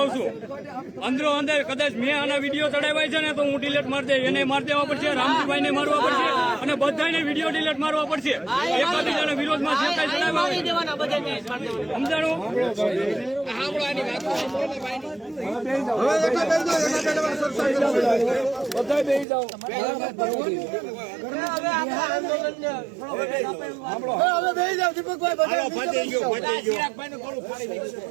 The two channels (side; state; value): left; drops out; at 19.2 s